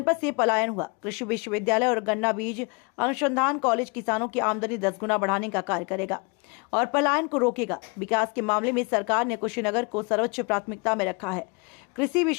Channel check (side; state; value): right; quieter; 31.1 dB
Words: से पलायन हुआ। कृषि विश्वविद्यालय और गन्ना बीज अनुसंधान कॉलेज किसानों की आमदनी 10 गुना बढ़ाने का कार्य करेगा और पलायन को रोकेगा। विकास के मामले में सरकार ने कुशीनगर को सर्वोच्च प्राथमिकता में रखा है। कृषि